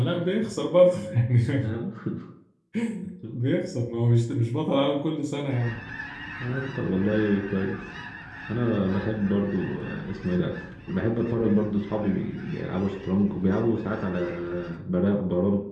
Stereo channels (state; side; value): identical; both; correlation 1.00